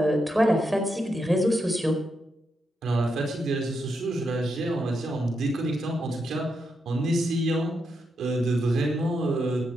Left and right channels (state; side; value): normal; both; correlation 0.83